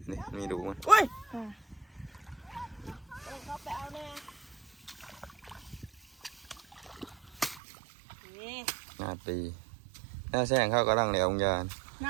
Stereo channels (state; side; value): drops out; left; at 7.6 s